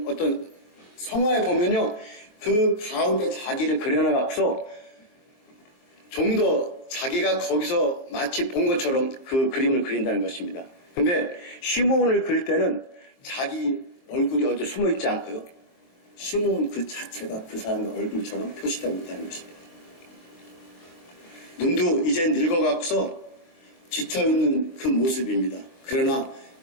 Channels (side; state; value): right; late; 23 ms